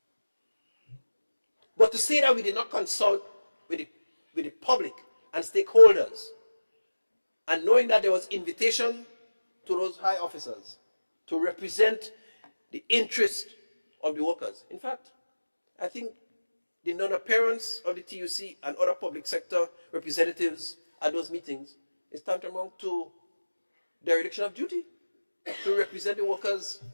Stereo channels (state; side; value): inverted; both; correlation -1.00